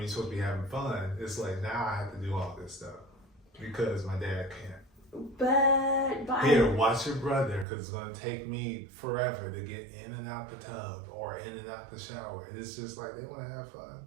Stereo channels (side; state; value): left; drops out; at 7.7 s